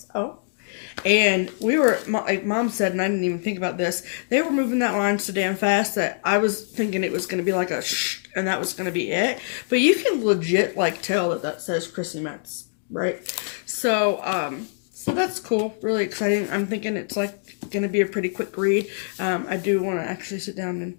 And we were, like Mom said, and I didn't even think about this, they were moving that line so damn fast that I was thinking it was going to be like a shh, and that was going to be it. But you can legit, like, tell that says Christie Metz, right? So, so that's cool. Really exciting. I'm thinking it's, like, going to be a pretty quick read. I do want to actually sit down and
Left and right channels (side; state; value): right; silent; digital silence